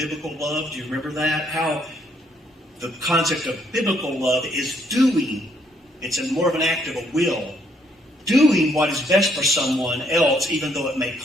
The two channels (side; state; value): both; normal; correlation 0.70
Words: love. Do you remember that? How the concept of biblical love is doing. It's more of an act of a will. Doing what is best for someone else, even though it may